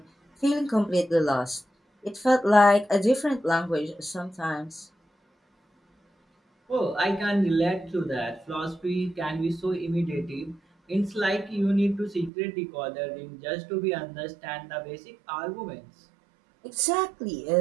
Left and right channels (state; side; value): drops out; left; at 12.3 s